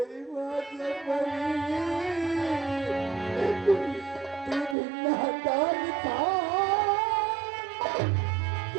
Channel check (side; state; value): left; drops out; at 4.8 s